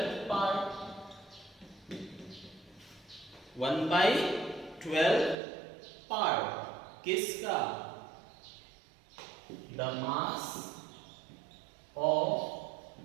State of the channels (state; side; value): drops out; left; at 5.4 s